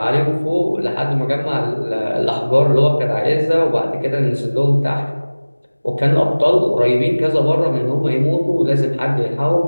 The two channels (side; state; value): both; inverted; correlation -1.00